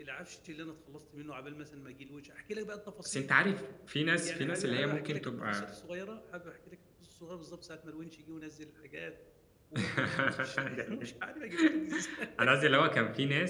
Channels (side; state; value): both; identical; correlation 1.00